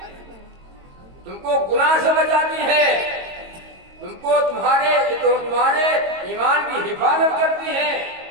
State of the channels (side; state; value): left; late; 22 ms